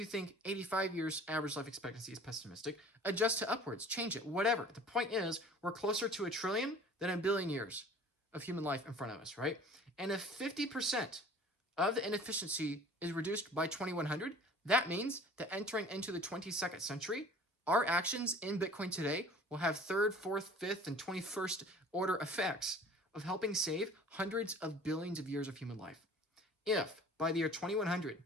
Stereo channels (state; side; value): normal; both; correlation 0.46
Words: think 85 years average life expectancy is pessimistic, adjust to upwards, change it, whatever. The point is, we're closer to 1 trillion than 1 billion years of human life in front of us, right? And if 50% of the inefficiency is reduced by 2100, That means that entering into the 22nd century, our actions in Bitcoin today will have third, fourth, fifth, and 21st order effects of helping save hundreds of billions of years of human life. If by the year 2100,